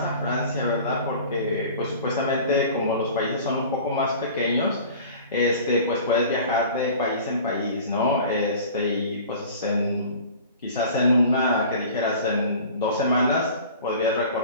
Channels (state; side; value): inverted; both; correlation -0.42